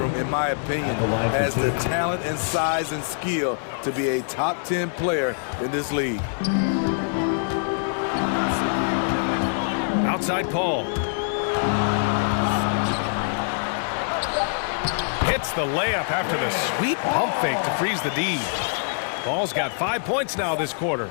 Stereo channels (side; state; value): right; silent; digital silence